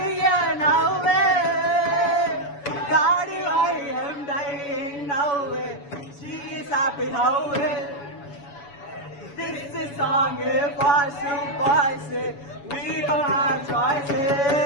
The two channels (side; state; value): right; late; 7.1 ms